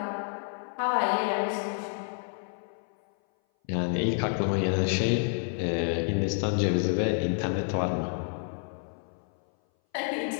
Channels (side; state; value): right; silent; 57 dB below the other